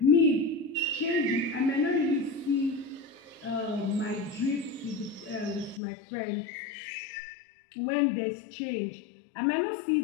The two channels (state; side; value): drops out; right; at 5.8 s